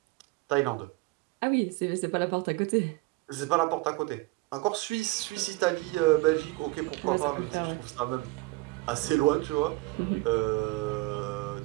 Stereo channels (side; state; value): left; quieter; 22.1 dB